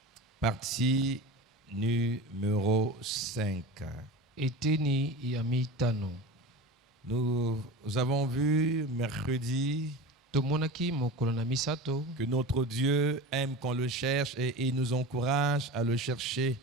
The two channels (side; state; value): both; normal; correlation 0.31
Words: partie numéro 5. eteni ya mitano. Nous avons vu mercredi Tomonaki mokolo na misato que notre Dieu aime qu'on le cherche et il nous encourage à le chercher.